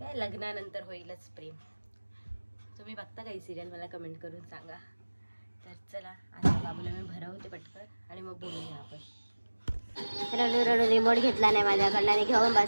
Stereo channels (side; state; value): both; inverted; correlation -1.00